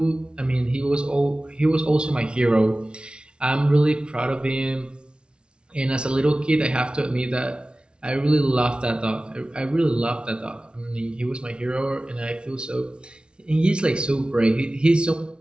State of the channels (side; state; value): left; late; 0.056 ms